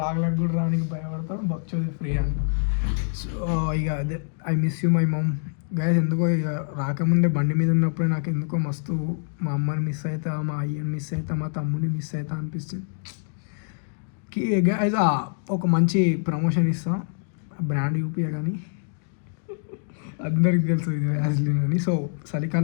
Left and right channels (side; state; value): right; silent; digital silence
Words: కూడా రానికి భయపడతాడు. బక్చోది ఫ్రీ అంట. సో ఇక అదే I miss you my mom guys. ఎందుకో ఇక రాకముందే బండి మీద ఉన్నప్పుడే నాకు ఎందుకో మస్తు మా అమ్మని మిస్ అవుతా, మా అయ్యని మిస్ అవుతా, మా తమ్ముడిని మిస్ అవుతా అనిపిస్తుంది. గైస్ ఒక మంచి ప్రమోషన్ ఇస్తాం, బ్రాండ్ యూపీఏ కానీ అందరికి తెలుసు ఇది వ్యాజ్లిన్ అని. సో